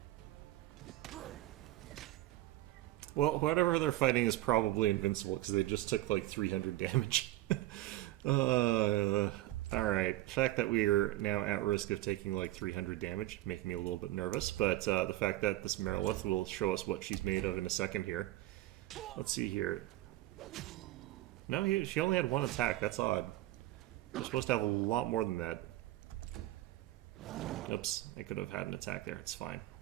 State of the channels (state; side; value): quieter; left; 16.3 dB